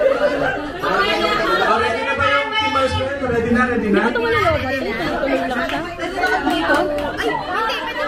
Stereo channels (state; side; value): identical; both; correlation 1.00